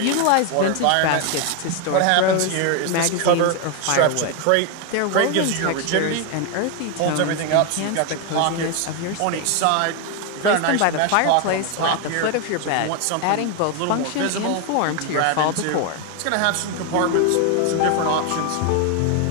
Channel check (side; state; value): both; different; correlation 0.01